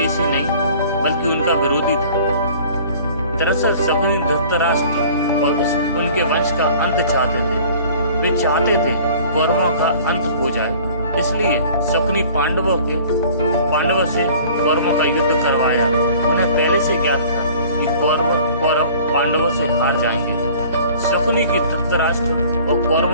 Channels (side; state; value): both; inverted; correlation -0.48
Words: नहीं बल्कि उनका विरोधी था। दरअसल शकुनी धृतराष्ट्र और उनके वंश का अंत चाहते थे। वे चाहते थे कौरवों का अंत हो जाए, इसलिए शकुनी पांडवों से कौरवों का युद्ध करवाया। उन्हें पहले से ज्ञात था कि कौरव पांडवों से हार जाएंगे। शकुनी की धृतराष्ट्र और